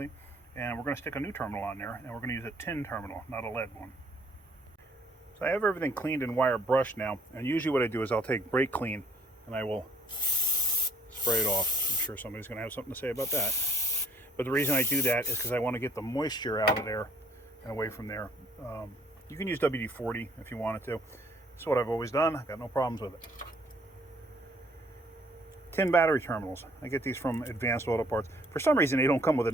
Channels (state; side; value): normal; both; correlation 0.62